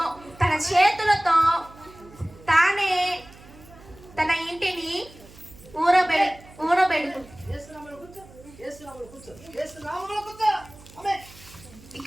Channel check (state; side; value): noise; right; hum, 21 dB below the sound